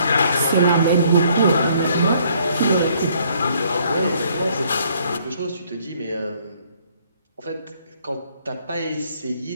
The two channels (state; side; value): inverted; both; correlation -0.64